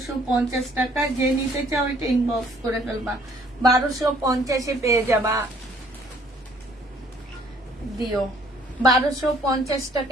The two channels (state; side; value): normal; both; correlation 0.61